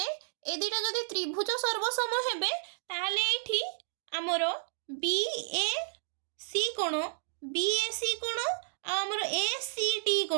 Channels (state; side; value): silent; left; digital silence